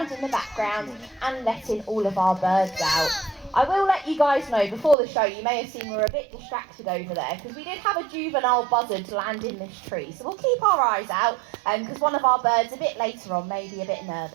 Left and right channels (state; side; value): drops out; left; at 5.0 s